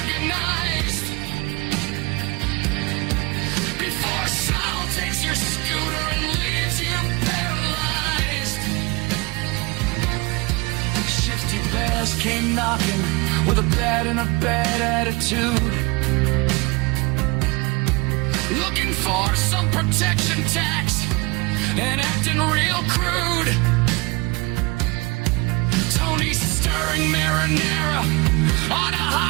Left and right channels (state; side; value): quieter; left; 26.2 dB